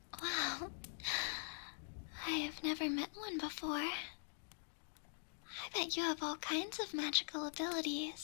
Wow. I have never met one before. I bet you have all kinds of magical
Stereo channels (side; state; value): right; silent; digital silence